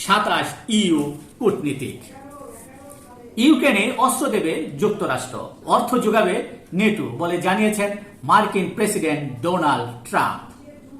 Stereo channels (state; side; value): identical; both; correlation 1.00